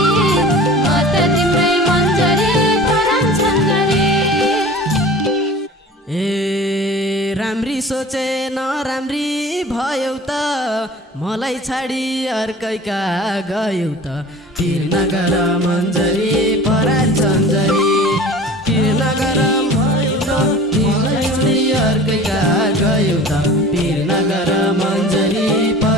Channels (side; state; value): both; normal; correlation 0.42